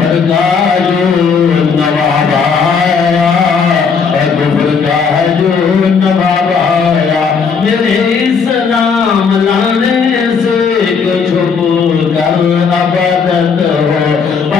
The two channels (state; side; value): quieter; right; 5.7 dB